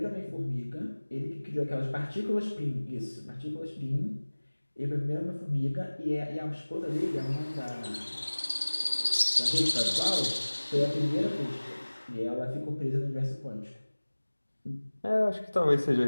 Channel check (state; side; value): inverted; both; correlation -1.00